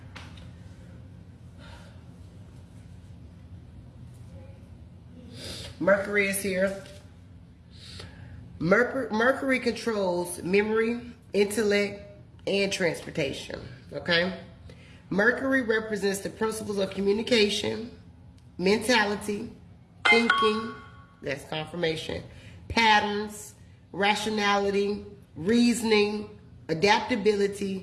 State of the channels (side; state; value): both; identical; correlation 1.00